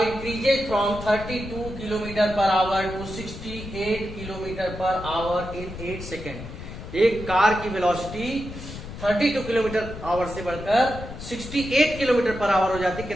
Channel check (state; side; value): noise; left; rumble, 11 dB below the sound